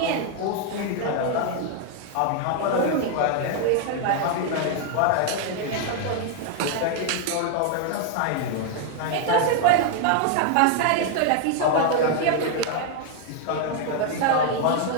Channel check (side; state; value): both; different; correlation 0.00